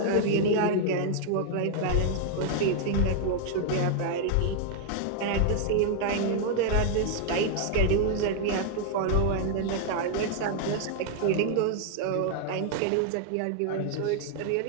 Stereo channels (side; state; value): both; different; correlation 0.00